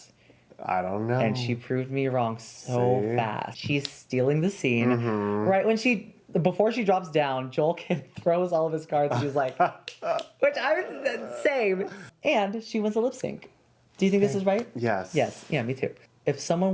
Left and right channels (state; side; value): identical; both; correlation 1.00